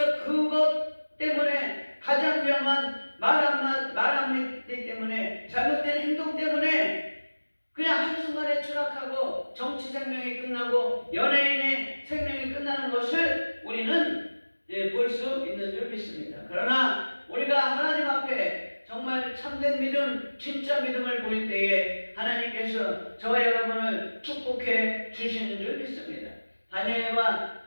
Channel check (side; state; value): both; inverted; correlation -1.00